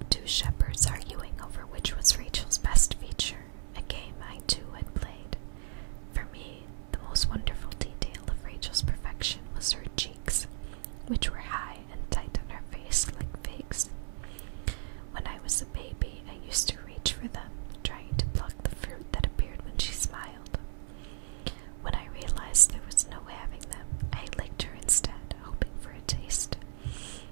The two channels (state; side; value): silent; left; 55 dB below the other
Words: two shepherds arguing over which was Rachel's best feature, a game I too had played. For me, the most wonderful detail of Rachel's perfection was her cheeks, which were high and tight on her face like figs. When I was a baby, I used to reach for them, trying to pluck the fruit that appeared when she smiled. When I realized there was no having them, I licked her instead, hoping for a taste.